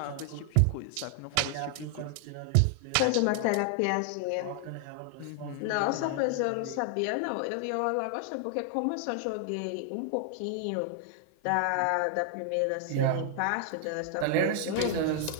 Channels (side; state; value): both; different; correlation 0.00